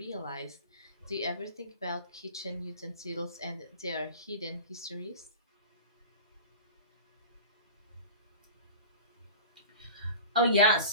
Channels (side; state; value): both; inverted; correlation -0.36